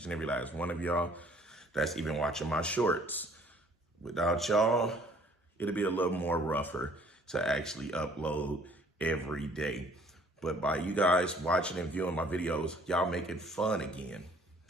and every last one of y'all that's even watching my shorts. Without y'all, it'll be a little more rougher to actually upload every day. But by you guys watching and viewing my videos, y'all make it fun again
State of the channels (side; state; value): both; normal; correlation 0.58